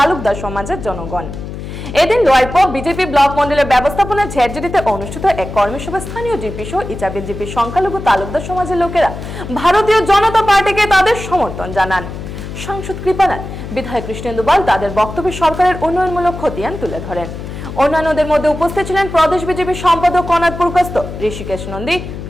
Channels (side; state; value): left; noise; hum, 9 dB below the sound